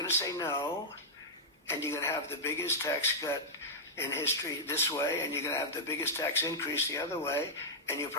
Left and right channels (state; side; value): normal; both; correlation -0.06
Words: to say no, and you're going to have the biggest tax cut in history this way, and you're going to have the biggest tax increase the other way, and you'll